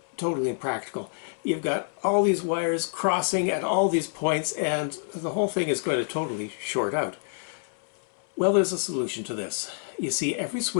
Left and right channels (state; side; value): silent; right; 60 dB below the other